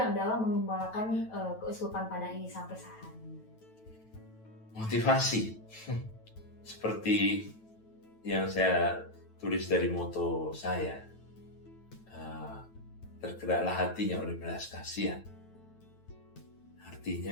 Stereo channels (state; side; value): late; right; 9.1 ms